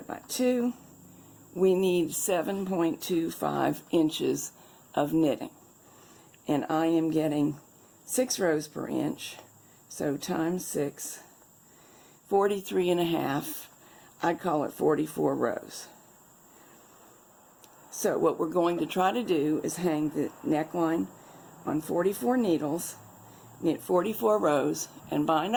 by 2. We need 7.25 inches of knitting, and I am getting 6 rows per inch, so times 6, 43.5. I'd call it 44 rows. So what we're going to try to do is hang the neckline on 44 needles, knit 44 rows, and bind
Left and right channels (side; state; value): both; identical; correlation 1.00